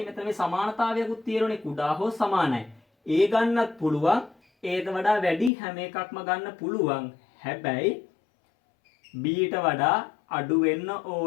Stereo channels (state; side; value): drops out; right; at 5.5 s